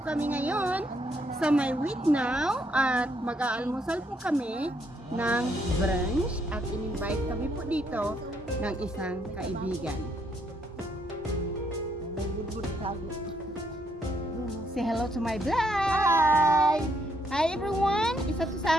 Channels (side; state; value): both; normal; correlation 0.73